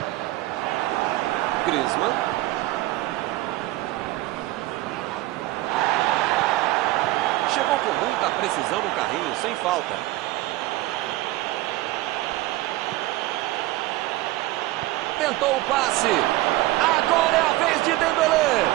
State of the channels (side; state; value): left; quieter; 17.8 dB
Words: Griezmann. Chegou com muita precisão no carrinho, sem falta. Tentou o passe. Agora é a vez de Dembélé.